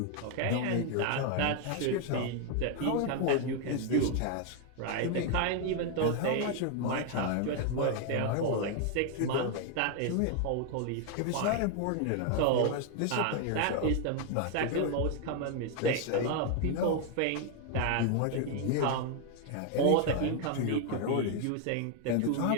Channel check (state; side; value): different; both; correlation 0.01